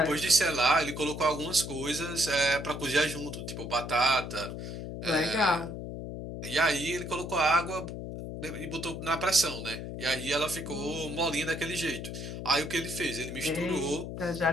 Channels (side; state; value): left; noise; hum, 7 dB below the sound